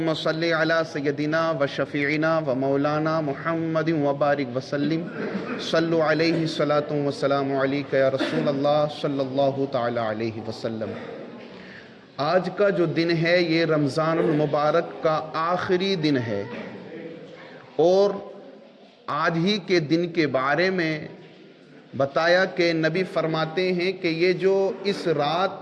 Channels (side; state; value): both; identical; correlation 1.00